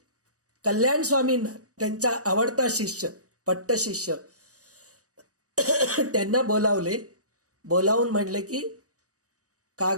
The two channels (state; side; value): late; left; 0.66 ms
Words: कल्याण स्वामींना, त्यांचा आवडता शिष्य, पट्ट शिष्य, त्यांना बोलावून म्हणले की